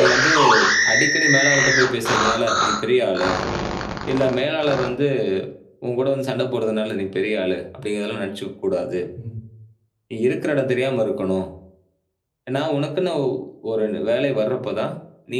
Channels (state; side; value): identical; both; correlation 1.00